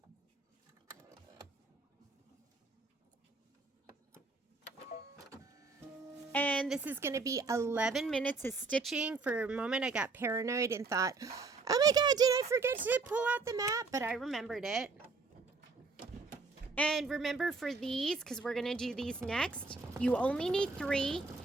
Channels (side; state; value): left; quieter; 4.0 dB